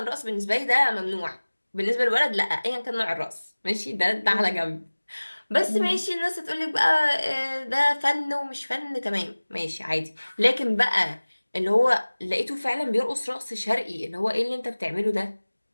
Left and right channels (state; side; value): inverted; both; correlation -1.00